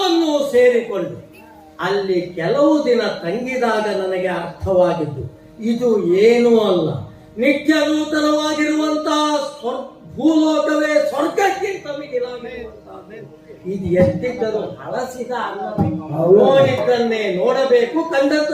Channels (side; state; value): both; identical; correlation 1.00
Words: ಸೇರಿಕೊಂಡು ಅಲ್ಲಿ ಕೆಲವು ದಿನ ತಂಗಿದಾಗ ನನಗೆ ಅರ್ಥವಾಗಿದ್ದು, ಇದು ಏನೂ ಅಲ್ಲ, ನಿತ್ಯ ನೂತನವಾಗಿರುವಂತಹ ಭೂಲೋಕವೇ ಸ್ವರ್ಗಕ್ಕಿಂತ ಮಿಗಿಲಾಗಿರುವಂತಹದ್ದು. ಇದು ಎತ್ತಿದ್ದರೂ ಹಳಸಿದ ಅನ್ನವೇ. ನೋಡಿದ್ದನ್ನೇ ನೋಡಬೇಕು,